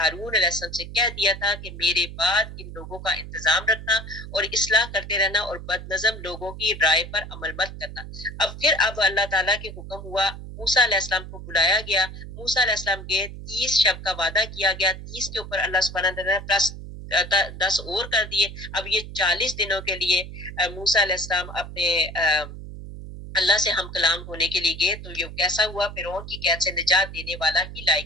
علیہ السلام سے کہہ دیا تھا کہ میرے بعد ان لوگوں کا انتظام رکھنا اور اصلاح کرتے رہنا، اور بد نظم لوگوں کی رائے پر عمل مت کرنا۔ اب اللہ تعالیٰ کے حکم ہوا، موسیٰ علیہ السلام کو بلایا گیا، موسیٰ علیہ السلام گئے، 30 شب کا وعدہ کیا گیا، 30 کے اوپر اللہ سبحانہ وتعالیٰ نے پلس 10 اور کر دیے۔ اب یہ 40 دنوں کے لیے موسیٰ علیہ السلام اپنے اللہ سے ہم کلام ہونے کے لیے گئے، تو یہ کیسا ہوا؟ فرعون کی قید سے نجات دینے والا ہی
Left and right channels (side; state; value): right; noise; hum, 12 dB below the sound